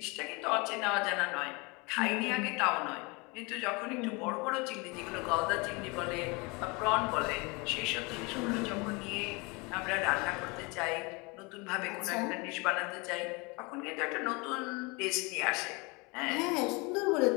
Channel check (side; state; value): right; quieter; 27.8 dB